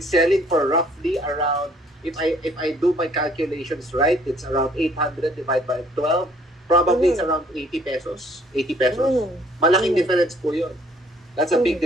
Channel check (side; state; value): both; normal; correlation 0.60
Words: selling for roughly around, if I do my calculations right, it's around 800 divided by 12. Probably it's around 80 pesos. 80 pesos. Mm. Malaking Mm. difference po yun. That's a big Mm.